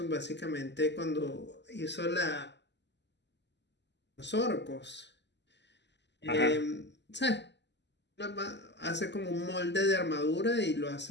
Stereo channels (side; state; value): right; late; 0.51 ms